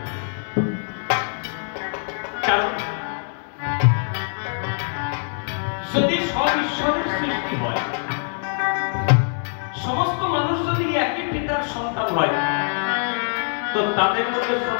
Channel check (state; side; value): silent; right; digital silence